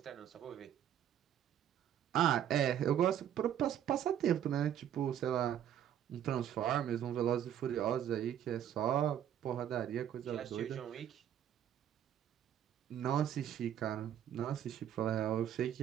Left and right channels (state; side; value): quieter; left; 10.2 dB